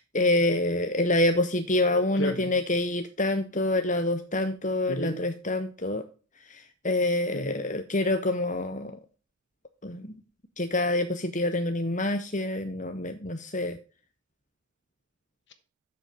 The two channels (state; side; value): normal; both; correlation 0.10